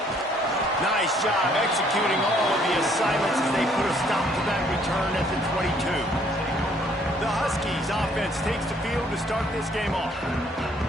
Nice job executing all of the assignments as they put a stop to that return at the 22. The Huskies offense takes the field to start this game off.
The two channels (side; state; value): both; normal; correlation 0.64